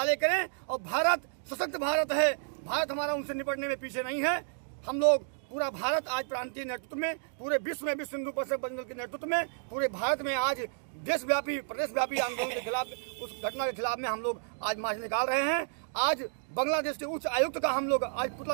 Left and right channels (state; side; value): silent; left; digital silence